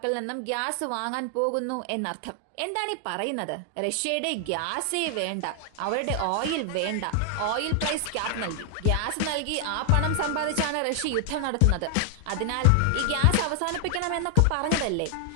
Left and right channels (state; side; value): different; both; correlation 0.00